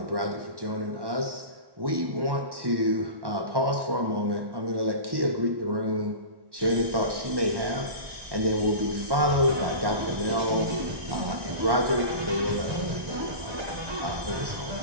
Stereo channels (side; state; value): left; late; 1.1 ms